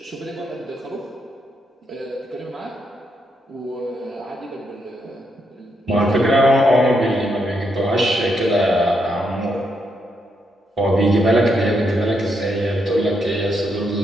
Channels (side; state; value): both; normal; correlation 0.79